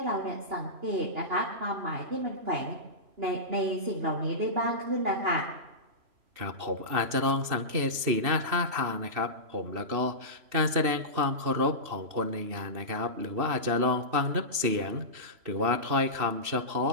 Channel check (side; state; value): left; late; 2.7 ms